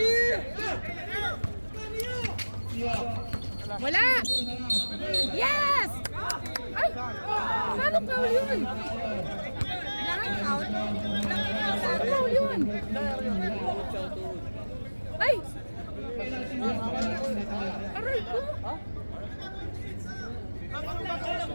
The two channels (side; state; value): both; inverted; correlation -1.00